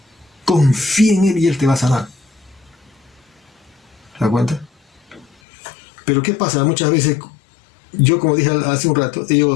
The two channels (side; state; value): right; drops out; at 5.4 s